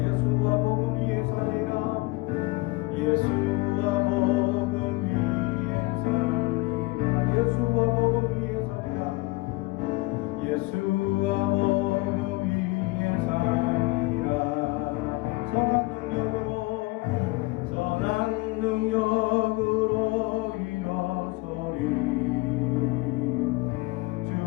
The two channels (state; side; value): quieter; right; 22.5 dB